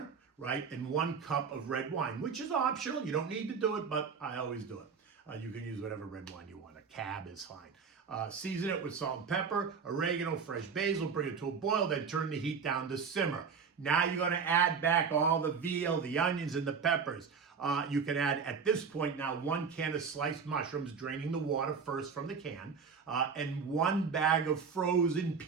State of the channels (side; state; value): left; quieter; 5.8 dB